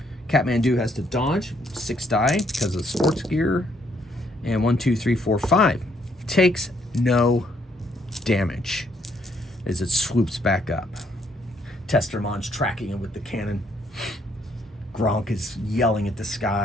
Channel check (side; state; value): both; normal; correlation 0.70